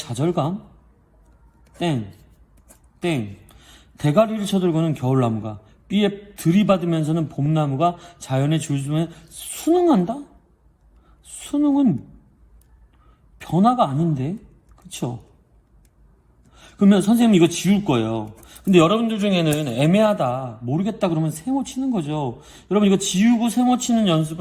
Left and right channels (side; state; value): both; identical; correlation 1.00